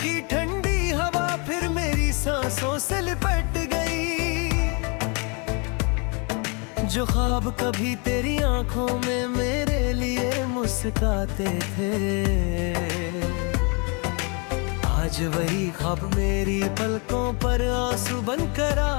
ठंडी हवा फिर मेरी सांसों से लिपट गई। जो ख्वाब कभी तेरी आंखों में मेरे लिए मुस्कुराते थे, आज वही ख्वाब मेरी पलकों पर आंसू बनकर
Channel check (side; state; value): right; quieter; 33.7 dB